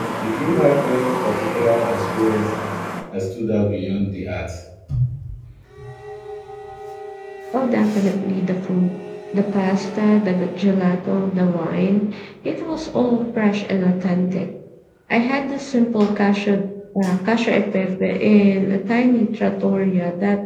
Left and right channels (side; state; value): both; identical; correlation 1.00